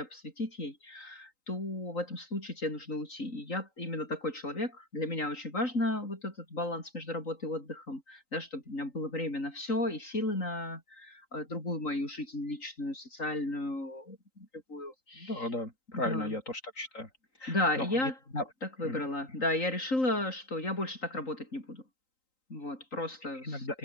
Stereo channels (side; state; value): right; late; 3.9 ms